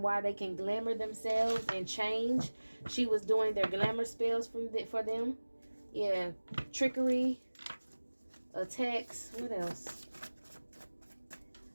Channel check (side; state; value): both; inverted; correlation -1.00